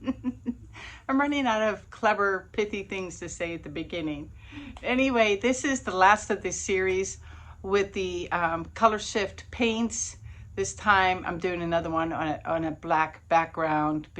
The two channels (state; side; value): identical; both; correlation 1.00